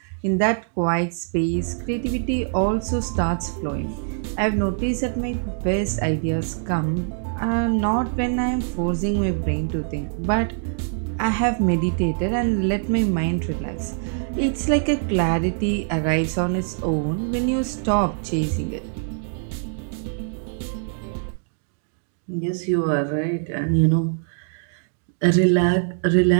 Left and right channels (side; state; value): left; silent; digital silence